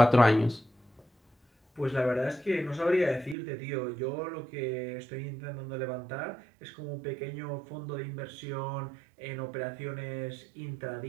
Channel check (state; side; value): drops out; left; at 3.4 s